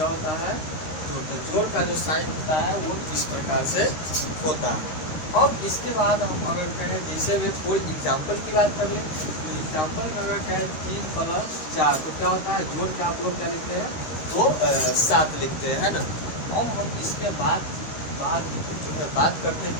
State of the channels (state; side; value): late; right; 13 ms